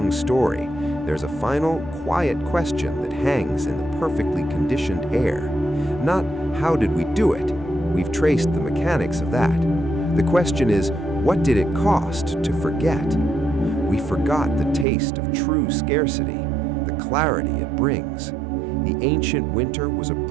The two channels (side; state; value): left; drops out; at 14.9 s